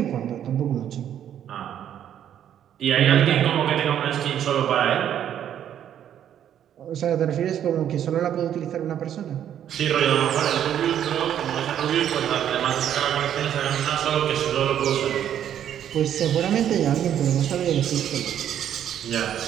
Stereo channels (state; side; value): quieter; left; 10.1 dB